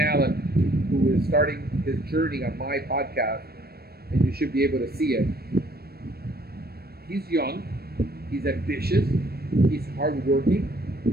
who is starting his journey on my podcast, and you should be able to see it. He's young, he's ambitious, he's hardworking,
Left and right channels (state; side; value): late; left; 0.46 ms